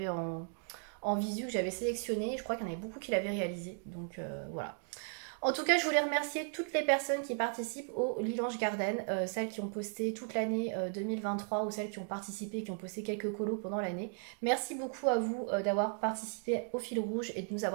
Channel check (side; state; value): left; silent; 54 dB below the other